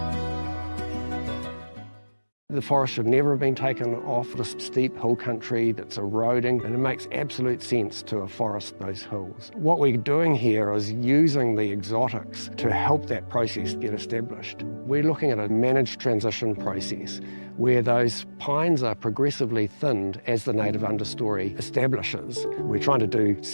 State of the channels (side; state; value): both; inverted; correlation -1.00